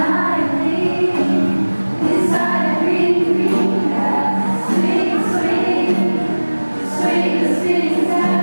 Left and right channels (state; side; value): inverted; both; correlation -1.00